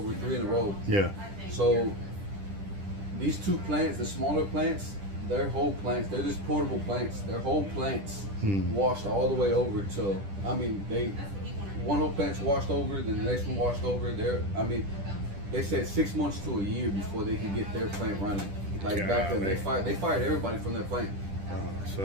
3 in a row. Yeah. So these 2 plants, the smaller plants, they're just portable plants. Their whole plants washed all the way over to. One whole plant's washed over, then the next one washed over. They said 6 months to a year before they can get their plant running. Like back then, they fired everybody from their plant.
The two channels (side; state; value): left; late; 10 ms